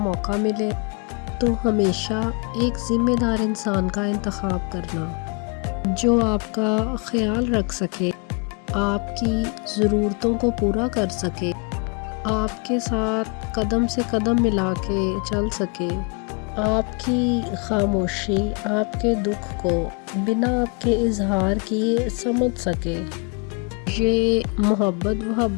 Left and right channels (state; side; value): quieter; right; 32.6 dB